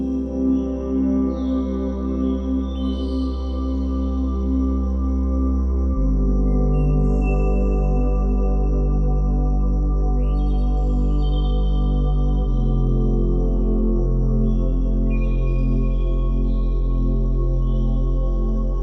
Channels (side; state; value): both; identical; correlation 1.00